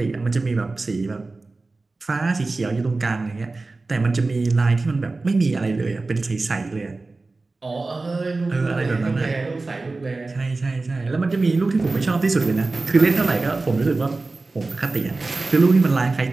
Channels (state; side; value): quieter; left; 3.5 dB